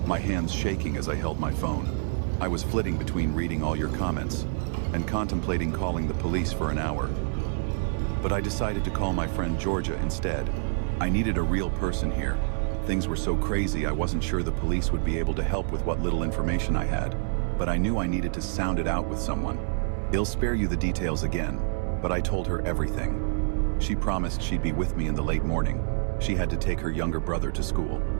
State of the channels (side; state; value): left; silent; digital silence